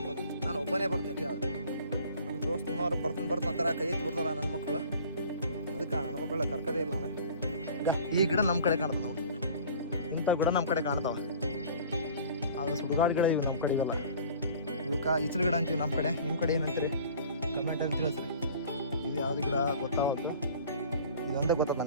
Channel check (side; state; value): both; inverted; correlation -0.47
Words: ಅಂತ. ನಾನು ಒಬ್ಬನೇ ಬರ್ತೀನಿ. ಯಾವ್ದು ನಮ್ಮ ದೋಸ್ತನವ್ರು ಬರ್ತಾನೆ ಕೈ ಎತ್ತಿ ಬಿಡ್ತಾರ ನನ್ನ ಮಕ್ಕಳು. ಅದಕ್ಕೆ ನನ್ನ ಮಕ್ಕಳ ಕರ್ಕದೇ ಇಲ್ಲ ನಾನು. ಈ ಗಿಡ ನಮ್ಮ ಕಡೆ ಕಾಣ್ತದೆ ನೋಡಿ, ಇಂಥ ಗಿಡ ನಮ್ಮ ಕಡೆ ಕಾಣ್ತಾವ. ಅದು ಸುಡುಗಾಡು ಗಿಡ ಇವು ನಮ್ಮ ಕಡೆ ಇವೆಲ್ಲ. ಇವಕ್ಕೆ ಈಚಲು ಗಿಡ ಅಂತೀವಿ ನಮ್ಮ ಕಡೆ. ನಿಮ್ಮ ಕಡೆ ಏನಂತೀರಿ ಕಮೆಂಟಲ್ಲಿ ತಿಳಿಸ್ರಿ. ಇದು ಯಾವ್ದು ಗಿಡ ಗೊತ್ತಾಗುತ್ತೆ. ಇದೊಂದೇ ಗೊತ್ತದ